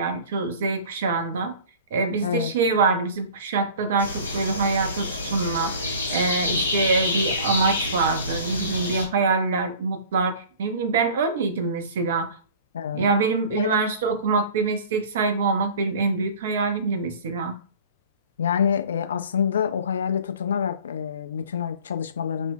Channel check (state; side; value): inverted; both; correlation -0.43